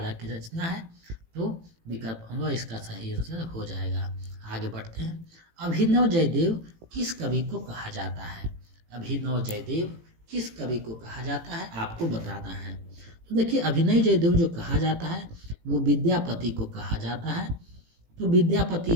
की रचना है। तो विकल्प होगा इसका सही आंसर हो जाएगा। आगे बढ़ते हैं। अभिनव जयदेव किस कवि को कहा जाता है। अभिनव जयदेव किस कवि को कहा जाता है आपको बताना है। तो देखिए अभिनव जयदेव जो कहा जाता है वो विद्यापति को कहा जाता है। तो विद्यापति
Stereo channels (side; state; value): left; late; 18 ms